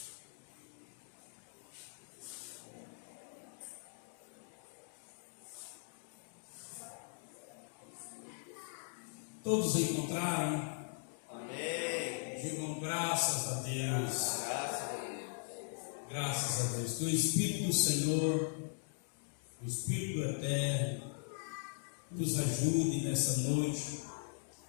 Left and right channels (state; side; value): silent; right; 52 dB below the other